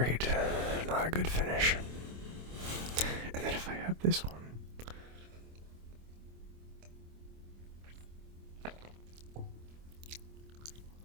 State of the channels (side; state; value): left; late; 25 ms